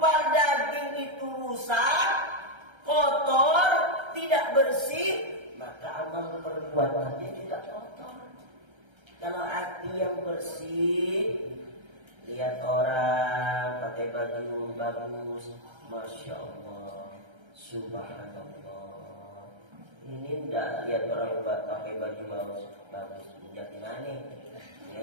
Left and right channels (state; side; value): late; left; 1.3 ms